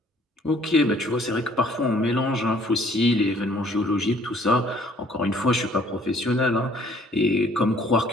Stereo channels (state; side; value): normal; both; correlation 0.59